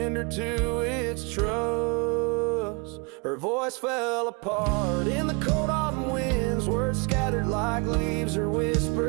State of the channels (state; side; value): quieter; left; 31.1 dB